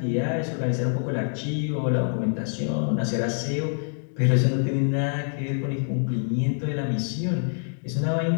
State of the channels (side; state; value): right; silent; digital silence